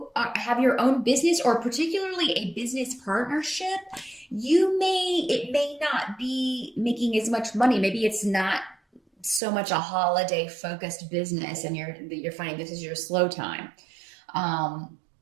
have your own business, or particularly a business partnership, it may not be making as much money. Maybe it's not so much a holiday focused business, and you're finding this is your slow time.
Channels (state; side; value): drops out; left; at 9.4 s